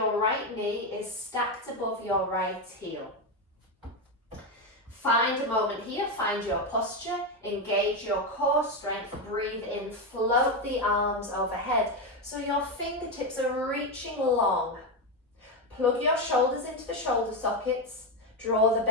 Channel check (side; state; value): both; normal; correlation 0.10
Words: right knee is stacked above your right heel. Find a moment here, find your posture, engage your core strength, breathe in, float the arms overhead so your fingertips are reaching long. Plug your shoulders into the shoulder sockets, draw the